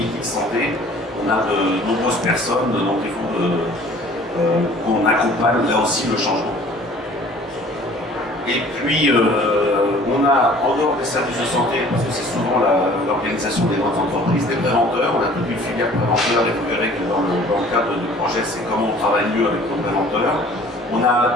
santé, on a de nombreuses personnes, donc il faut qu'on accompagne là aussi le changement. Et puis on a, en dehors des services de santé, parce que c'est souvent l'organisation des grandes entreprises, des préventeurs, on a toute une filière préventeur, et vous verrez que dans le cadre du projet, c'est comment on travaille mieux avec nos préventeurs. On a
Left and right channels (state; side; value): normal; both; correlation 0.51